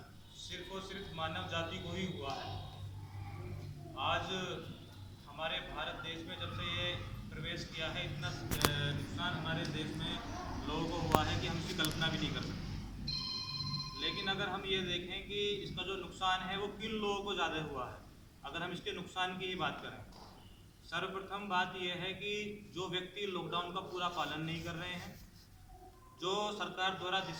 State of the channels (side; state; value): both; identical; correlation 1.00